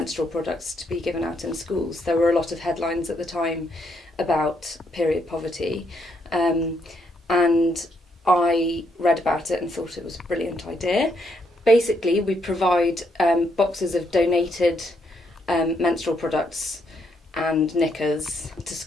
products to be given out in schools. There were a lot of headlines at the time about period poverty, and I read about it and thought it was a brilliant idea. Basically, we provide boxes of donated menstrual products and knickers to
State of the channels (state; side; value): normal; both; correlation 0.75